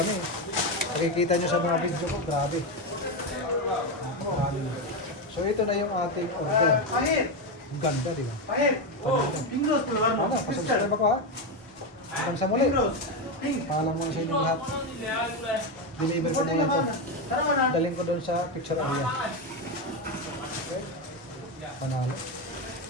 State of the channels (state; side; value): normal; both; correlation 0.11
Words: Nakikita nyo sa mga video ko, grabe. Marami. So ito na yung ating order. Ang ganda, di ba? Ano, pasubscribe ako ha? Hanggang sa muli. Paalam mo sa inyong lahat. Deliver ko na yan to. Daling ko doon sa picture area. Okay? Panalo.